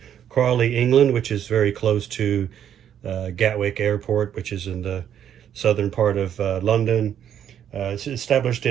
Crawley, England, which is very close to Gatwick Airport, which is in the southern part of London. It's established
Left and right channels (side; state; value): left; quieter; 9.6 dB